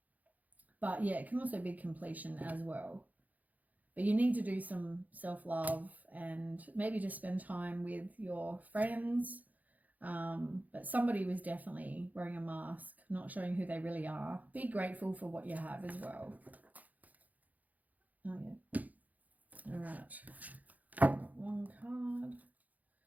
But yeah, it can also be completion as well. But you need to do some self-love and maybe just spend time with your friends. But somebody was definitely wearing a mask, not showing who they really are. Be grateful for what you have as well. Oh, yeah. All right. One card.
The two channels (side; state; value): left; late; 0.079 ms